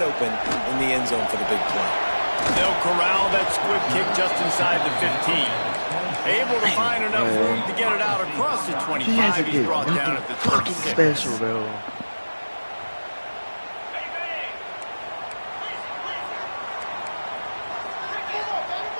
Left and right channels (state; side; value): inverted; both; correlation -1.00